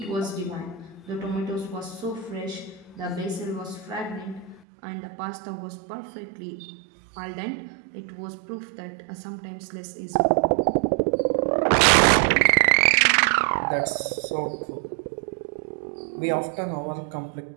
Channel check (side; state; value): left; drops out; at 4.7 s